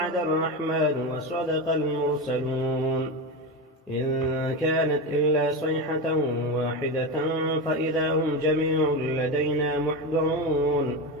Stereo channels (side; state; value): both; normal; correlation 0.18